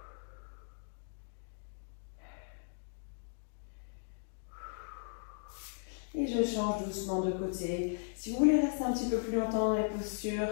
Et je change doucement de côté. Si vous voulez rester un petit peu plus longtemps dans les postures,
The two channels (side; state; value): right; silent; digital silence